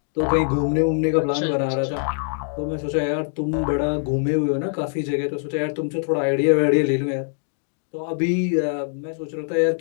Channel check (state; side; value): silent; right; 63 dB below the other